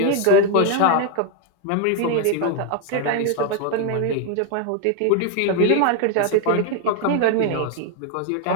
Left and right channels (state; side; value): different; both; correlation 0.01